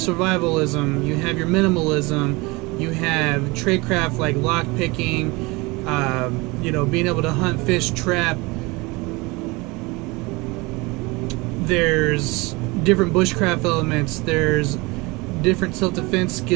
you have your minimalism, you have tradecraft like lock picking, being able to hunt, fish, trap. There's different bushcraft elements, there's different self-defense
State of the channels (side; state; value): left; quieter; 24.7 dB